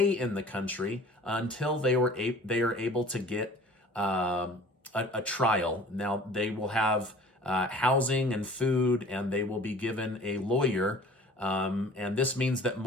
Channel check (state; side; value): normal; both; correlation 0.47